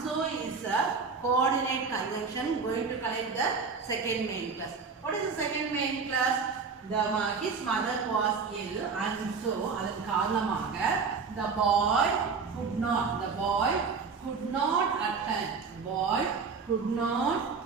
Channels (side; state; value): left; quieter; 5.1 dB